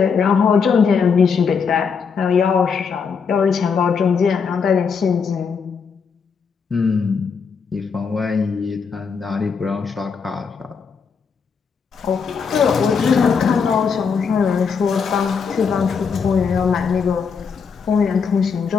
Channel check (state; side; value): quieter; right; 5.9 dB